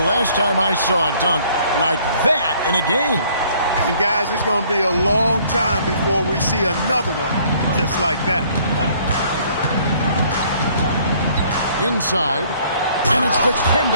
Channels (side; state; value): both; inverted; correlation -0.60